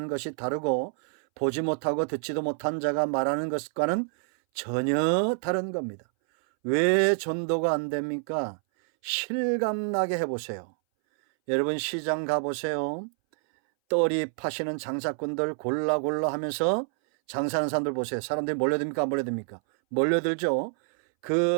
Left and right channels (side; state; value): left; silent; 60 dB below the other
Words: 것이 다르고 보지 못하고 듣지도 못한 자가 말하는 것과는 전혀 다른 겁니다. 왜 전도가 안 됩니까? 실감나게 해보세요. 여러분 시장 가보세요. 떨이 파시는 장사꾼들 골라 하면서 장사하는 사람들 보세요. 사람들이 몰려듭니까? 안 몰려듭니까? 몰려들죠.